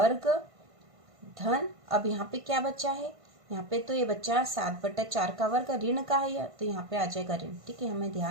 धन, अब यहाँ पे क्या बचा है, यहाँ पे तो ये बच्चा 7/4 का वर्ग ऋण का है, तो यहाँ पे आ जाएगा ऋण, ठीक है, हमें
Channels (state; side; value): late; left; 1.5 ms